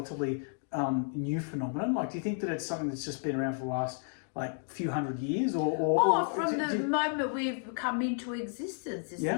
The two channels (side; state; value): right; silent; 56 dB below the other